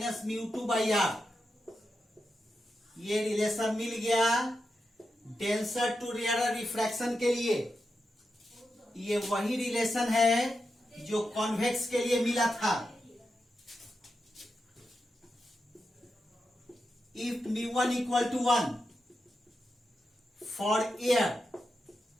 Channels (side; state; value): both; normal; correlation 0.88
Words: μ2 by R. ये रिलेशन मिल गया डेंसर टू रेयर रिफ्रैक्शन के लिए। ये वही रिलेशन है जो कॉन्वेक्स के लिए मिला था। If μ1 equal to 1 for air